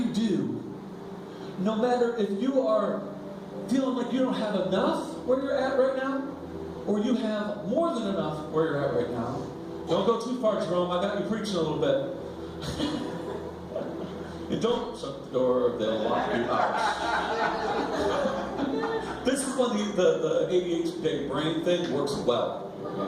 do, no matter if you are feeling like you don't have enough where you're at right now, or you have more than enough where you're at right now, don't go too far, Jerome. I got you preaching a little bit. And don't shut the door, they'll lock you out. This is when the ADHD brain thing works well.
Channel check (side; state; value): both; identical; correlation 1.00